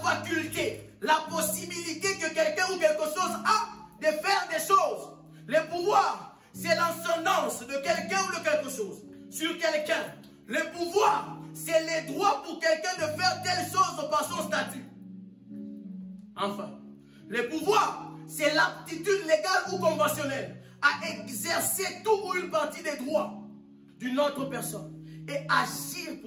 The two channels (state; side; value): identical; both; correlation 1.00